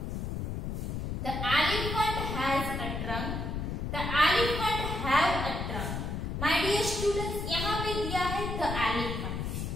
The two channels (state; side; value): noise; left; rumble, 3 dB below the sound